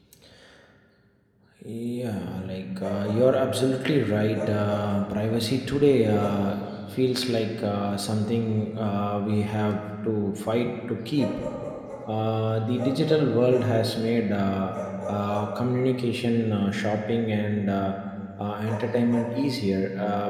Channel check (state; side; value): identical; both; correlation 1.00